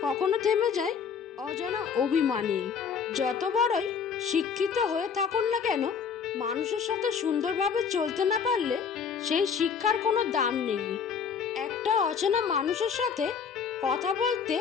কখনো থেমে যায় অজানা অভিমানে। যত বড়ই শিক্ষিত হয়ে থাকুন না কেন, মানুষের সাথে সুন্দরভাবে চলতে না পারলে সেই শিক্ষার কোনো দাম নেই। একটা অচেনা মানুষের সাথে কথা বলতে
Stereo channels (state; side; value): quieter; right; 6.5 dB